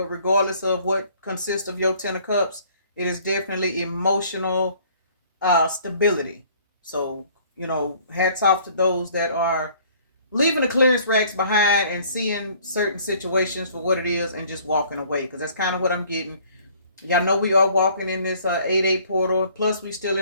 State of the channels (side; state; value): both; inverted; correlation -0.56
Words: regardless of what consists of your Ten of Cups, it is definitely emotional stability. So, hats off to those that are leaving the clearance racks behind and seeing certain situations for what it is and just walking away, because that's kind of what I'm getting. Y'all know we are walking in this 8-8 portal. Plus, we still